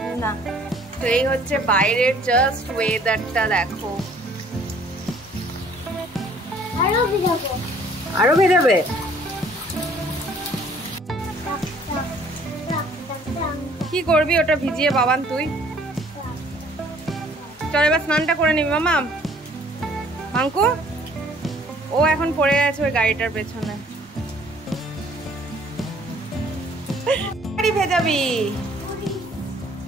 না, তো এই হচ্ছে বাইরের জাস্ট ওয়েদারটা দেখো। আরো ভেজাবে? কি করবি ওটা ভিজিয়ে বাবান তুই? চল এবার স্নানটা করে নিবি মামা। মাঙ্কু ও এখন পড়ে আছে ওই গাড়িটার পেছনে। গাড়ি ভেজাবি?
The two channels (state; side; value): normal; both; correlation 0.57